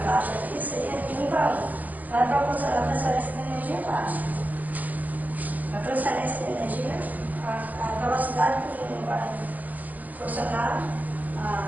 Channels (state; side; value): late; left; 0.081 ms